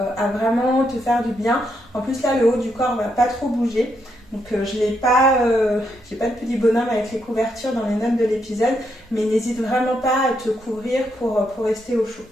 à vraiment te faire du bien. En plus là le haut du corps va pas trop bouger, donc je n'ai pas, j'ai pas de petit bonhomme avec les couvertures dans les notes de l'épisode, mais n'hésite vraiment pas à te couvrir pour rester au chaud.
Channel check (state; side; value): normal; both; correlation 0.79